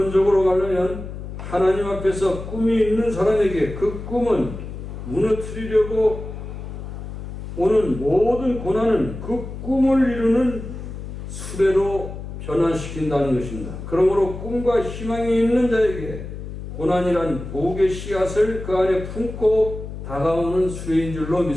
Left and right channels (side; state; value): left; noise; hum, 9 dB below the sound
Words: 가려면 하나님 앞에서 꿈이 있는 사람에게 그 꿈은 무너뜨리려고 오는 모든 고난은 그 꿈을 이루는 수레로 변화시킨다는 것입니다. 그러므로 꿈과 희망이 있는 자에게 고난이란 복의 씨앗을 그 안에 품고 다가오는 수레인 줄로